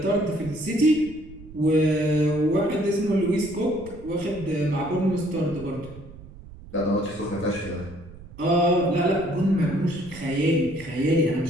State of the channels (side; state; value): right; noise; rumble, 18 dB below the sound